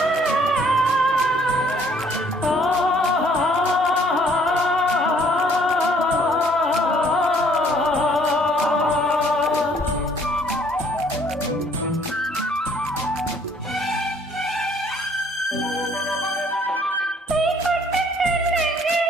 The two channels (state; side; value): normal; both; correlation 0.61